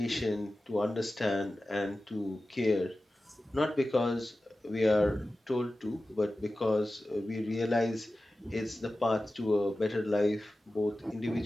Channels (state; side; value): normal; both; correlation 0.95